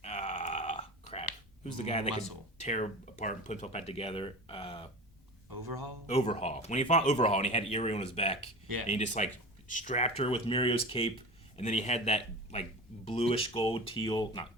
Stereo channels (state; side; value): normal; both; correlation 0.32